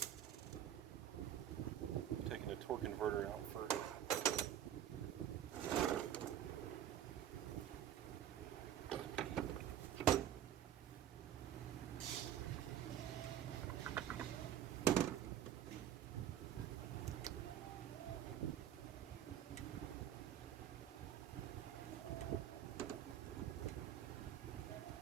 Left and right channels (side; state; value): left; quieter; 10.5 dB